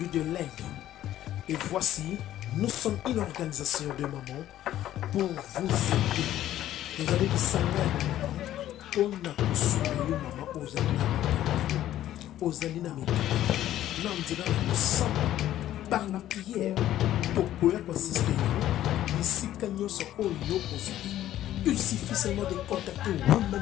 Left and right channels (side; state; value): right; quieter; 12.9 dB